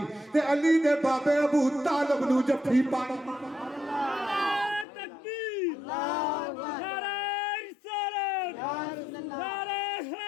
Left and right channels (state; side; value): drops out; right; at 4.9 s